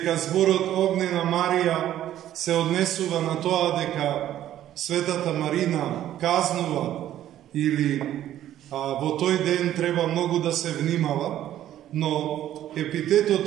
зборот Огнена Марија се однесува на тоа дека Светата Марина казнува или во тој ден треба многу да се внимава, но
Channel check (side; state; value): left; quieter; 12.2 dB